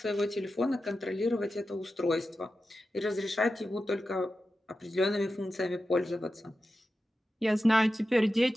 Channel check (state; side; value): normal; both; correlation 0.92